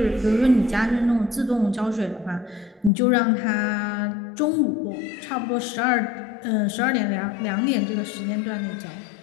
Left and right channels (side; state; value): right; drops out; at 2.9 s